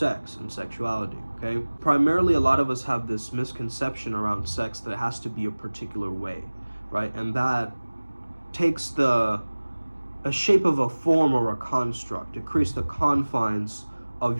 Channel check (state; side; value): inverted; both; correlation -1.00